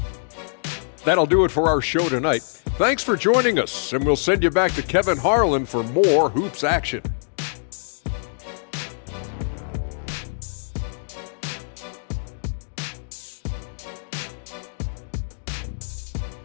That'll do it for our show tonight. Thanks for joining us, and we'll send you back to Kevin Harlan for more hoops action.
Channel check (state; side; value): silent; right; digital silence